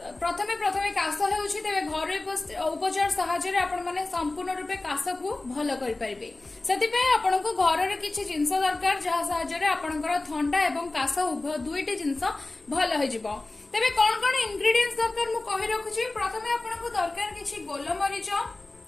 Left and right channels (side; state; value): right; quieter; 3.1 dB